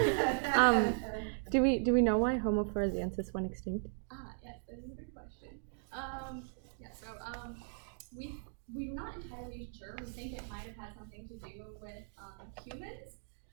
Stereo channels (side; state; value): left; silent; digital silence